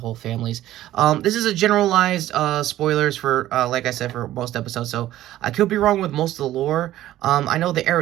families. This is a generalized spoilers for, like I said, for most episodes, so I could be wrong with most of the lore. I know the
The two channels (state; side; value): quieter; left; 14.1 dB